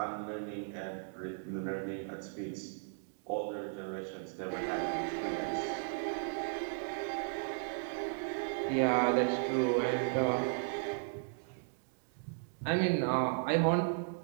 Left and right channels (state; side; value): silent; left; digital silence